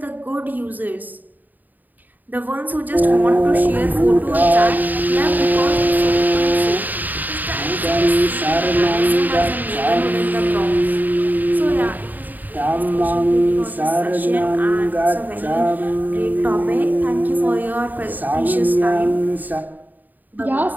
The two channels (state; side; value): late; left; 0.085 ms